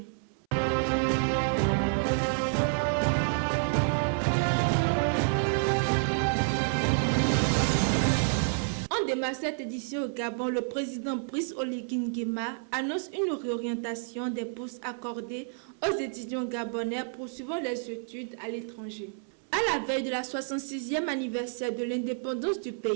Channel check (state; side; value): silent; left; 58 dB below the other